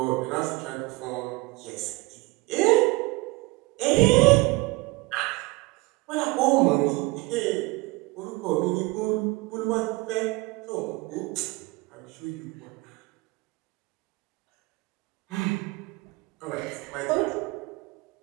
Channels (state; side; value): quieter; left; 23.6 dB